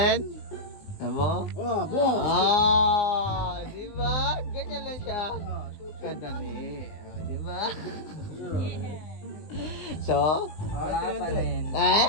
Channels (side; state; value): right; late; 19 ms